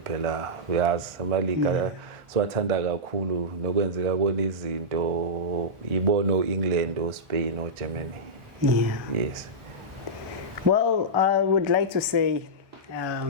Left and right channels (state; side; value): late; left; 1.4 ms